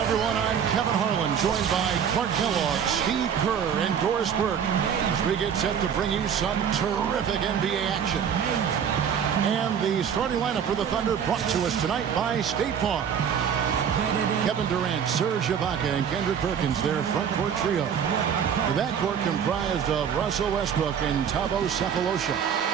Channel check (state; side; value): quieter; left; 7.9 dB